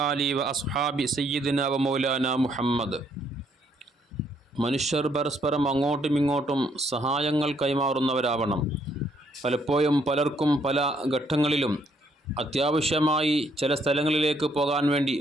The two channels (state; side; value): normal; both; correlation 0.70